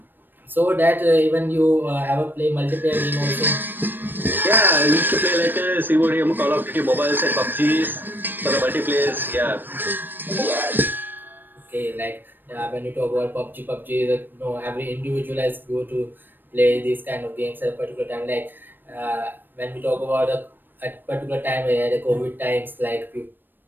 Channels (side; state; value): left; late; 0.093 ms